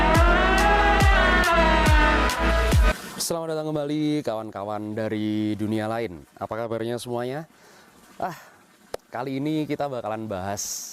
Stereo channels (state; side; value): identical; both; correlation 1.00